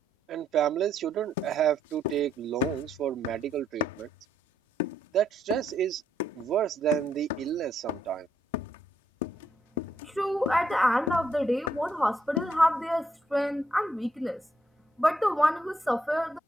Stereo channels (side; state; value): both; normal; correlation 0.74